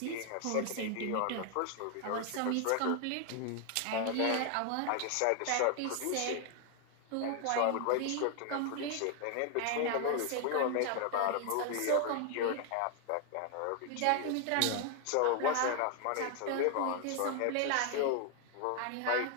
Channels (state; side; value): different; both; correlation 0.00